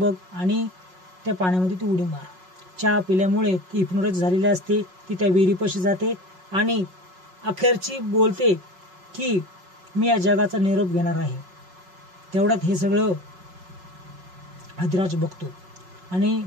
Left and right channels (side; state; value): left; late; 5.4 ms